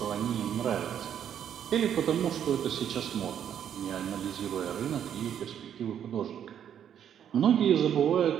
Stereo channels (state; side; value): quieter; left; 9.3 dB